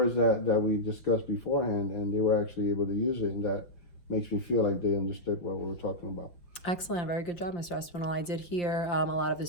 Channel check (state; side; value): late; right; 5.8 ms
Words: that we discussed beforehand, and they were actually able to use it, and that makes me feel like they understood what we were talking about. Excellent. Very good job, Mr. Espinal. I did hear a lot of the